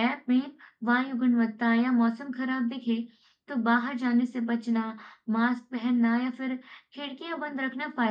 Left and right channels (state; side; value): identical; both; correlation 1.00